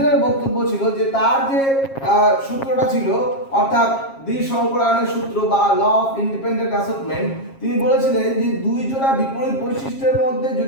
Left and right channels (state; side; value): late; right; 7.4 ms